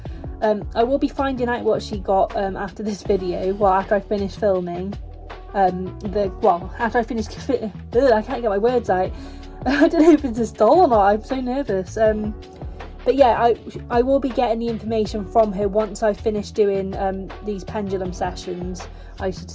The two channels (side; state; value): both; identical; correlation 1.00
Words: I will be finding out what she got after this video, well, after I finish filming. After I finish, I can't get my words out. I don't know if it's a doll or not, I'm so nervous. But yeah, I will be getting the information from her once I finish doing these pendulum sessions, I should